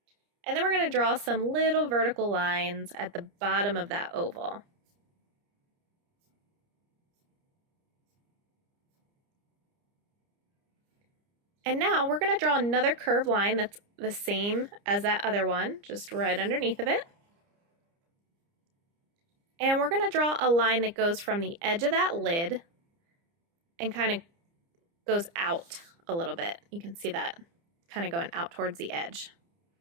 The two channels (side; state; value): left; late; 30 ms